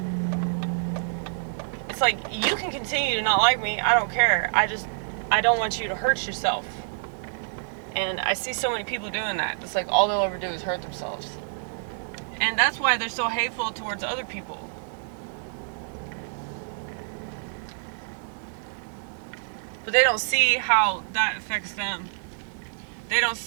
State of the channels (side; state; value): left; silent; digital silence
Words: It's like, you can continue to not like me. I don't care. I don't want you to hurt yourself. And I see so many people doing that. It's like all they'll ever do is hurt themselves. And that's why they're so hateful towards other people. But they don't see how that affects them. They don't